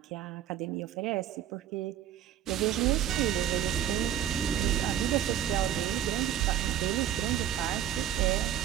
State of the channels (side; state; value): left; quieter; 10.6 dB